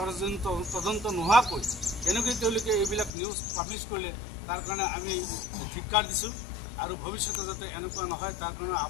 তদন্ত নোহোৱাকৈ কেনেকৈ তেওঁলোকে এইবিলাক নিউজ পাব্লিছ কৰিলে তাৰ কাৰণে আমি ধিক্কাৰ দিছোঁ, আৰু ভৱিষ্যতে যাতে এনেকুৱা নহয় তাৰ কাৰণে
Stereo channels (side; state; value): right; drops out; at 3.1 s